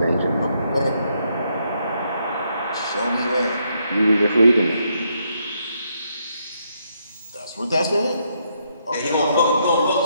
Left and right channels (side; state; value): both; inverted; correlation -0.76